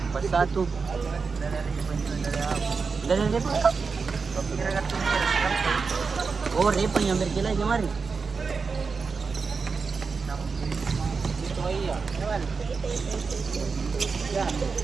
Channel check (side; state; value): left; quieter; 4.9 dB